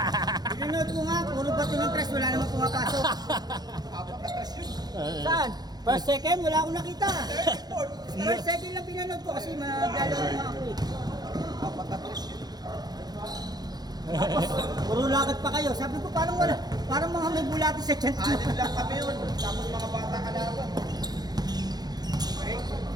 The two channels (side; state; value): left; late; 0.19 ms